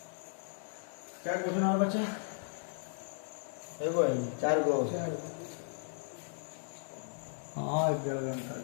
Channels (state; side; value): silent; right; digital silence